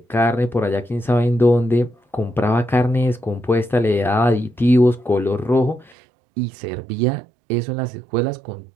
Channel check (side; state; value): left; drops out; at 6.0 s